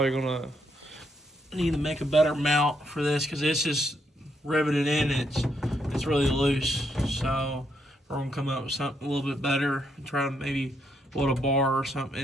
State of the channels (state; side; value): normal; both; correlation 0.76